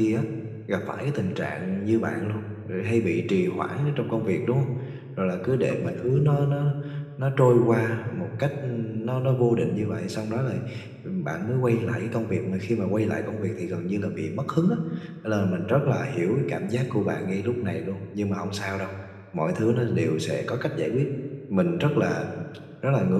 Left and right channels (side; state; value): both; identical; correlation 1.00